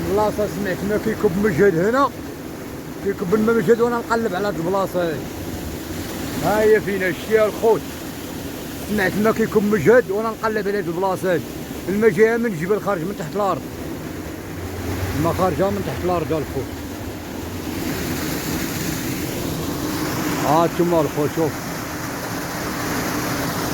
البلاصه سمعت ما كيكب مجهد هنا، كيكب الماء مجهد وانا نقلب على هاد البلاصه هادي. ها هي فينا شتيها الخوت، سمعت ما كيكب مجهد وانا نقلب على هاد البلاصه هادي. الماء جايه من الجبل خارج من تحت الارض، الماء خارجه من تحت الارض الخوت. ها انتما الخوت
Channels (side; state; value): both; identical; correlation 1.00